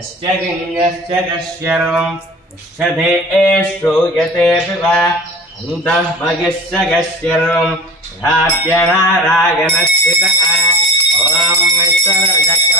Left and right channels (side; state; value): both; normal; correlation 0.36